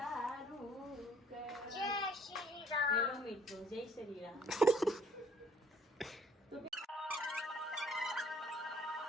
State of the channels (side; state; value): both; normal; correlation 0.58